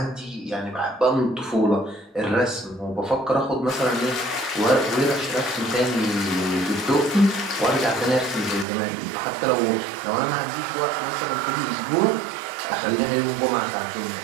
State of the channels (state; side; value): drops out; left; at 8.7 s